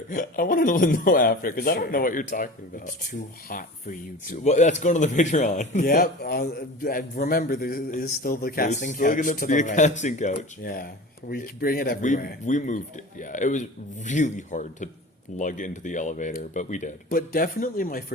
I want to know after because I don't know what you're talking It's about. too hot for you to. Well, that's going to the Patreon. Yep. Remember, there is still the casting There's still couch going to to be the a right. casting couch. Yeah, we bring it everywhere. We moved it. Yeah, it was really hard to lug into the elevator, but we did. But definitely my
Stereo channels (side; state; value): both; normal; correlation 0.36